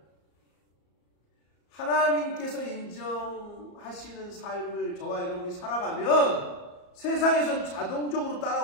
하나님께서 인정하시는 삶을 저와 여러분이 살아가면 세상에선 자동적으로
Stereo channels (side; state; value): right; late; 34 ms